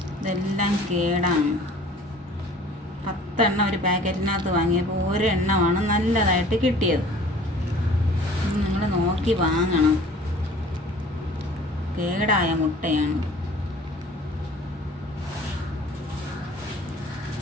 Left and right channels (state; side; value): normal; both; correlation 0.49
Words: ഇതെല്ലാം കേടാണ്. 10 എണ്ണം ഒരു പാക്കറ്റിനകത്ത് വാങ്ങിയപ്പോൾ ഒരെണ്ണമാണ് നല്ലതായിട്ട് കിട്ടിയത്. നിങ്ങൾ നോക്കി വാങ്ങണം. കേടായ മുട്ടയാണ്.